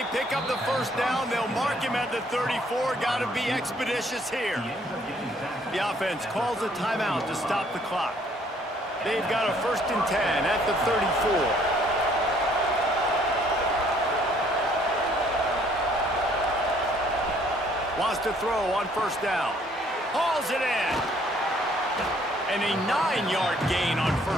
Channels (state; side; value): normal; both; correlation 0.63